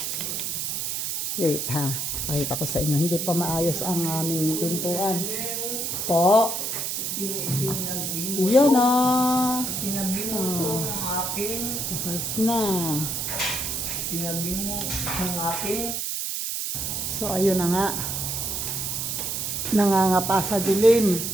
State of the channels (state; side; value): noise; right; hiss, 2 dB below the sound